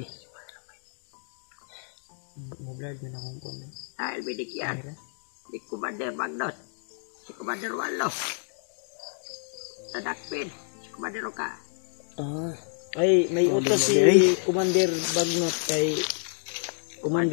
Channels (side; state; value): right; silent; digital silence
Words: Mablad mo na kung kung. Dahil binigyan ni Commander Magnot si Commander Warlo. Nadakpin si Commander ka. ah, Ay, may utos si Commander Bagnot kay